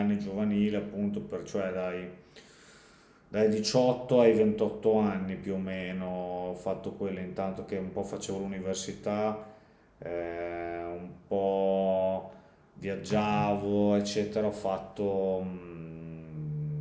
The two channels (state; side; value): identical; both; correlation 1.00